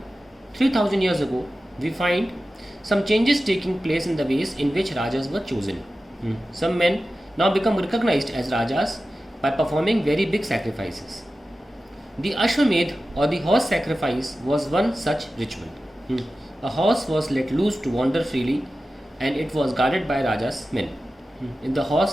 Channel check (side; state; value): both; normal; correlation 0.94